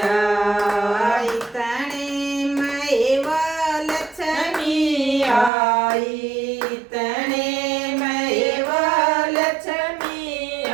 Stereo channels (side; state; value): left; drops out; at 5.5 s